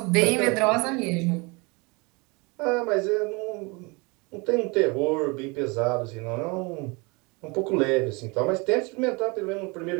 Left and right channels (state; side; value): quieter; left; 28.2 dB